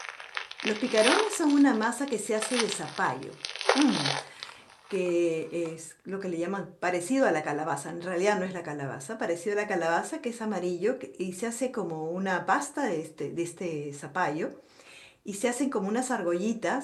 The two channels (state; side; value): identical; both; correlation 1.00